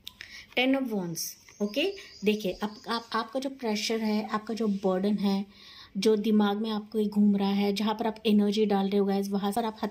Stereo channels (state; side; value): identical; both; correlation 1.00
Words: 10 of wands. Okay, देखिए आपका जो प्रेशर है, आपका जो बर्डन है, जो दिमाग में आपको घूम रहा है, जहाँ पर आप एनर्जी डाल रहे हो गाइस, वहाँ पर आप